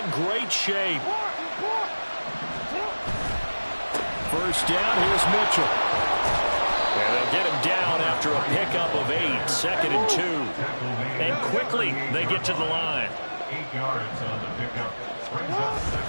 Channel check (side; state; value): both; inverted; correlation -1.00